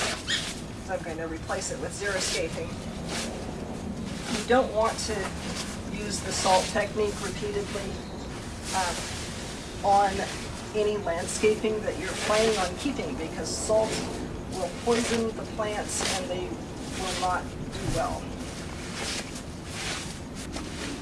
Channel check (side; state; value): both; identical; correlation 1.00